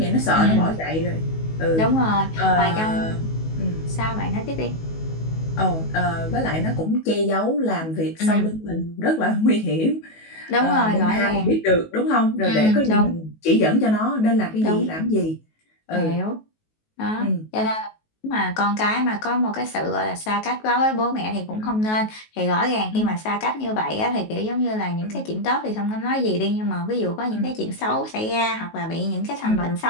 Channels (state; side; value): late; right; 19 ms